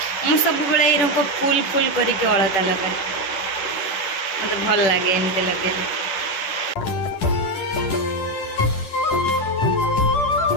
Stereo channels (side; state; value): right; late; 10 ms